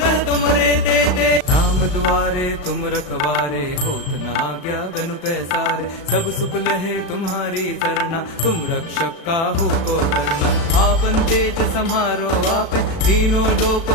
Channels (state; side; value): late; right; 36 ms